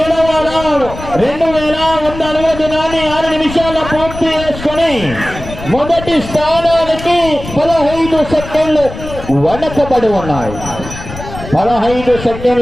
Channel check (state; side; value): noise; left; rumble, 11 dB below the sound